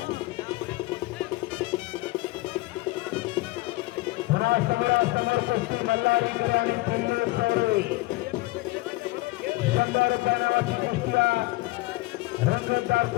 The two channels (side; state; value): right; quieter; 20.5 dB